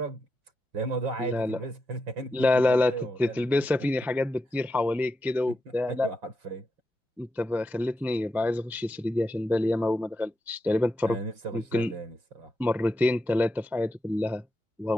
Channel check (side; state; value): both; normal; correlation 0.87